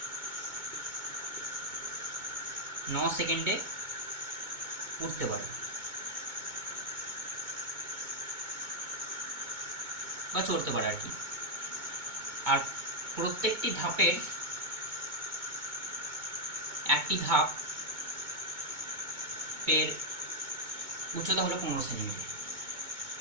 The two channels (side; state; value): left; late; 2.2 ms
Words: 9 সেকেন্ডে উঠতে পারে বা চড়তে পারে আর কি। আর প্রত্যেকটি ধাপের একটি ধাপের উচ্চতা হলো 15 সেন্টিমিটার।